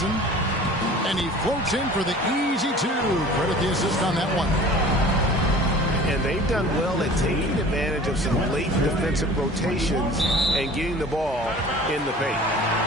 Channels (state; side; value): normal; both; correlation 0.44